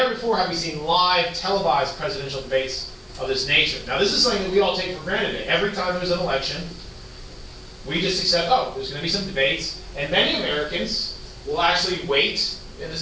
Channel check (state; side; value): identical; both; correlation 1.00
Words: before have we seen live televised presidential debates of this nature. Now this is something that we all take for granted. Every time there's an election, we just accept, there's going to be some debates, and many Americans will actually wait, and